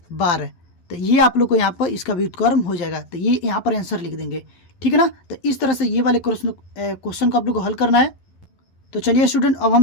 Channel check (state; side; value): late; right; 11 ms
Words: 12। तो ये आप लोग को यहाँ पर इसका व्युत्क्रम हो जाएगा, तो ये यहाँ पर आंसर लिख देंगे, ठीक है ना। तो इस तरह से ये वाले क्वेश्चन को आप लोग को हल करना है। तो चलिए स्टूडेंट अब हम